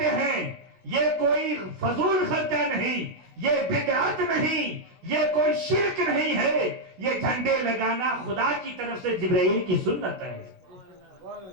ہیں یہ کوئی فضول خرچہ نہیں، یہ بدعت نہیں، یہ کوئی شرک نہیں ہے، یہ جھنڈے لگانا خدا کی طرف سے جبرائیل کی سنت ہے۔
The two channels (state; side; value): late; left; 16 ms